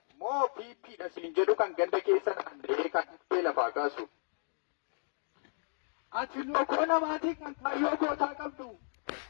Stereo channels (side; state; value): right; silent; digital silence